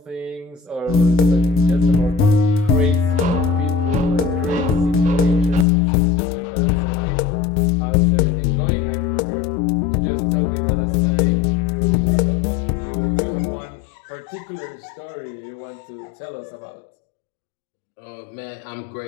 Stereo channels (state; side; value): drops out; right; at 5.7 s